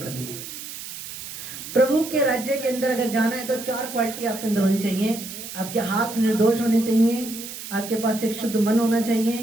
करनी है। प्रभु के राज्य के अंदर अगर जाना है तो 4 क्वालिटी आपके अंदर होनी चाहिए। आपके हाथ निर्दोष होने चाहिए, आपके पास एक शुद्ध मन होना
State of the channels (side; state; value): right; noise; hiss, 10 dB below the sound